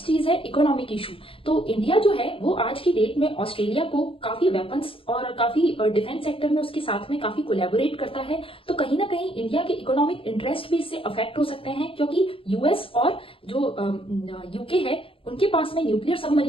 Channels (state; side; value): late; right; 0.26 ms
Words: चीज है इकोनॉमिक इशू। तो इंडिया जो है वो आज की डेट में ऑस्ट्रेलिया को काफी वेपन्स और काफी डिफेंस सेक्टर में उसके साथ में काफी कोलैबोरेट करता है, तो कहीं ना कहीं इंडिया के इकोनॉमिक इंटरेस्ट भी इससे अफेक्ट हो सकते हैं, क्योंकि यूएस और जो यूके है उनके पास में न्यूक्लियर